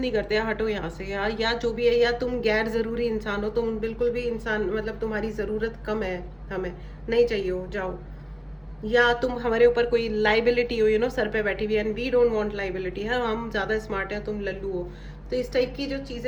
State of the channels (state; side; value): identical; both; correlation 1.00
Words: करते, हटो यहाँ से यार, या जो भी है, या तुम गैर जरूरी इंसान हो, तुम बिल्कुल भी इंसान, मतलब तुम्हारी जरूरत कम है, हमें नहीं चाहिए हो, जाओ। या तुम हमारे ऊपर कोई लाइबिलिटी हो, सर पे बैठी हुई, and we don't want liability है, हम ज्यादा स्मार्ट हैं, तुम लल्लू हो। तो इस टाइप की जो